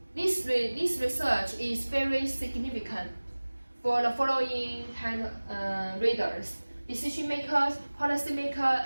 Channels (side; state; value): both; inverted; correlation -1.00